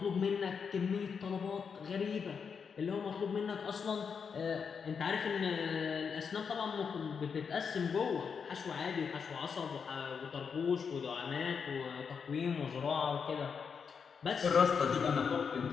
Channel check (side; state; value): right; quieter; 6.2 dB